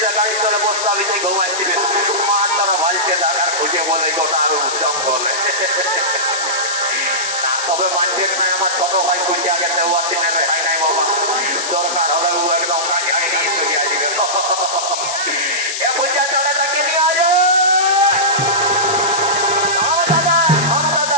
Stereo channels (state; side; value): noise; left; hiss, 4 dB below the sound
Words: গাড়ির তলে বসতে আমি তাই ঘুমাইছিলেন মার তারা ভাইকে দেখার খুঁজে বলে গোটা আমি উদ্যম বলে। তবে মানবেন না আমার ছোট ভাই খুঁজে আগে হয় নাই বাবা, দরকার হলে ও একদম কাজে আগে নিয়ে চলে আসবে। এ পূজা চলে তাকে নিয়ে আজ